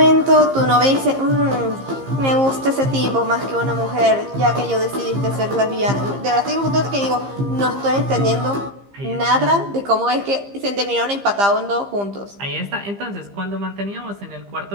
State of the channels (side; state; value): left; late; 15 ms